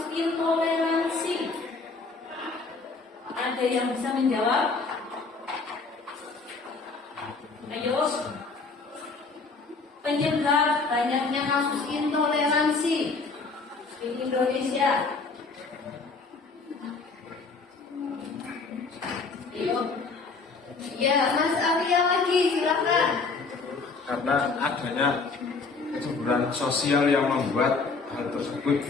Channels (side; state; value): right; quieter; 4.2 dB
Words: intoleransi? Ada yang bisa menjawab? Ayo. Penyebab banyaknya kasus intoleransi di Indonesia. Ya, Mas Arya lagi, silakan. Karena adanya kecemburuan sosial yang membuat hal tersebut,